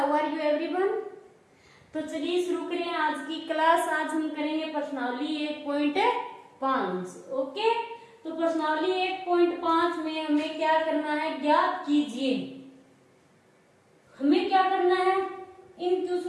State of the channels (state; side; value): identical; both; correlation 1.00